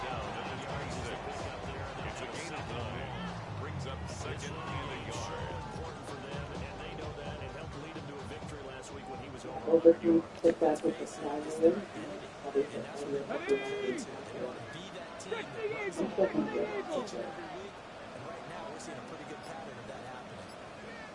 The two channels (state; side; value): identical; both; correlation 1.00